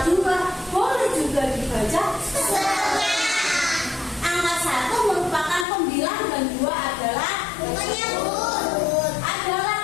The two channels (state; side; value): drops out; right; at 5.7 s